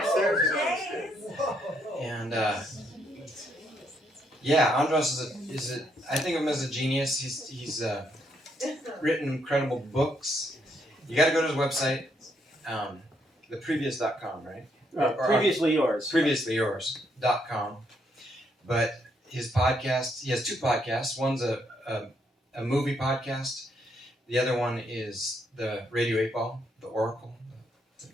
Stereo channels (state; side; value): normal; both; correlation 0.74